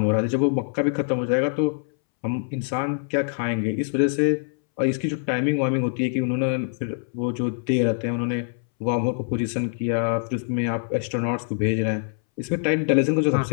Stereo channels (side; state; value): right; silent; 62 dB below the other